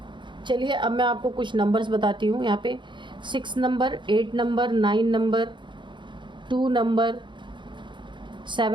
चलिए अब मैं आपको कुछ नंबर्स बताती हूँ। यहाँ पे 6 number, 8 number, 9 number, 2 number,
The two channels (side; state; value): left; late; 0.23 ms